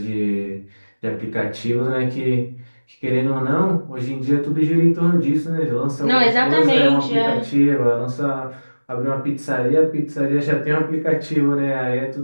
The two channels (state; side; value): inverted; both; correlation -1.00